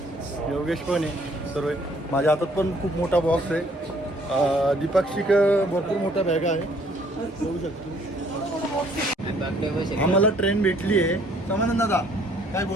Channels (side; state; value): both; normal; correlation 0.61